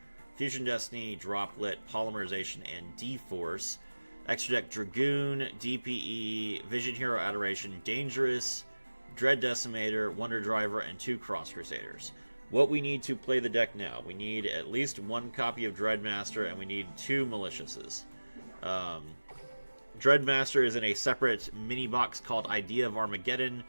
Fusion Destiny, Droplet, Polymerization, and D-Force. Extra deck Dragoon, DPE, Vision Hero Adoration, Dangerous, Dread Decimator, Wonder Driver, and 2 Cross Crusaders. What we need to play the deck now, we need at least 1 copy of Dreadmaster, and we need 2 Maliciouses. Dreadmaster is in a separate mini box called Idea of Armageddon.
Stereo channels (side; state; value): both; inverted; correlation -1.00